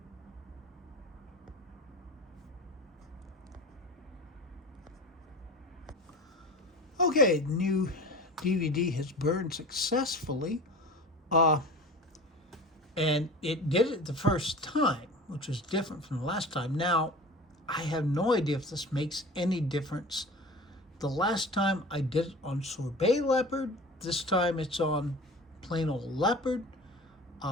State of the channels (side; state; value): both; normal; correlation 0.37